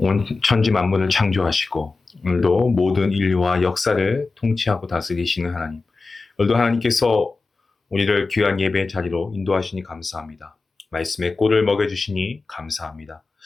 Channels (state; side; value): quieter; right; 3.9 dB